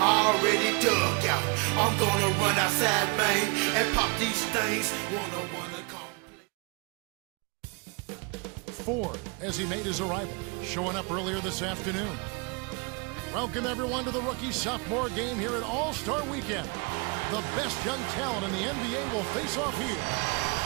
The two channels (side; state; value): left; quieter; 31.1 dB